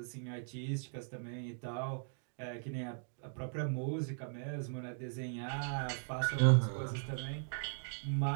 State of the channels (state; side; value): silent; left; digital silence